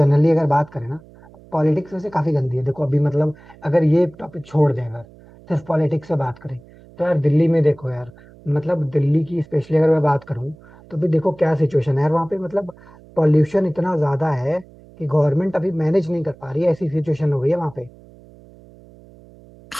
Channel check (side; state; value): right; noise; hum, 23 dB below the sound